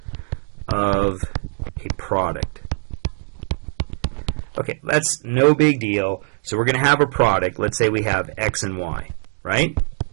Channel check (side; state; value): left; silent; digital silence